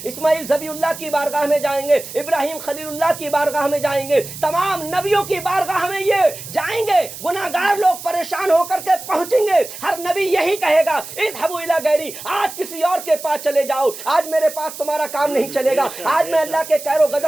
اسماعیل ذبیح اللہ کی بارگاہ میں جائیں گے، ابراہیم خلیل اللہ کی بارگاہ میں جائیں گے، تمام نبیوں کی بارگاہ میں یہ جائیں گے۔ گناہگار لوگ پریشان ہو کر کے پہنچیں گے، ہر نبی یہی کہے گا اذهبوا الی غیری، آج کسی اور کے پاس چلے جاؤ، آج میرے پاس تمہارا کام نہیں چلے گا، آج میں اللہ کے قہر و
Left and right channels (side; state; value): right; noise; hiss, 12 dB below the sound